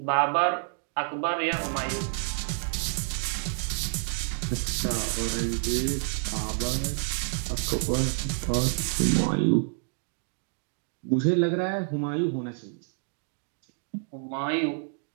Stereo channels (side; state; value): left; silent; 59 dB below the other